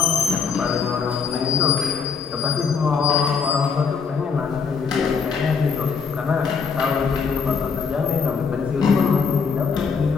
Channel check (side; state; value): right; quieter; 5.7 dB